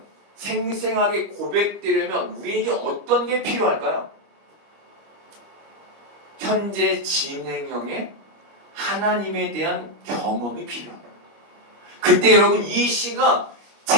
생생하게 고백되려면 우리에게 어떤 게 필요할까요? 현재 진행형의 하나님에 대한 경험이 필요합니다. 그때 여러분, 이 시가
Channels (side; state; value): left; late; 25 ms